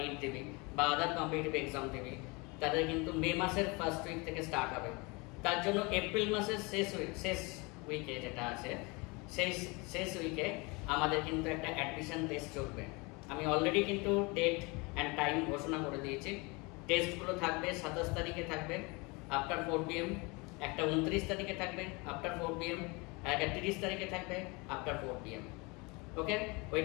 দেবে বা আদার কম্পিটিটিভ এক্সাম দেবে, তাদের কিন্তু মে মাসের ফার্স্ট উইক থেকে স্টার্ট হবে। তার জন্য এপ্রিল মাসের শেষ উইকে যেটা আছে, সেই শেষ উইকে আমাদের কিন্তু একটা অ্যাডমিশন টেস্ট চলবে। আমি অলরেডি কিন্তু ডেট অ্যান্ড টাইম ঘোষণা করে দিয়েছি। টেস্টগুলো থাকবে 27 তারিখে থাকবে আফটার 4 PM, একটা 29 তারিখে থাকবে আফটার 4 PM, একটা 30 তারিখে থাকবে আফটার 4 PM। ওকে, ওই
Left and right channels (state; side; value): quieter; right; 27.3 dB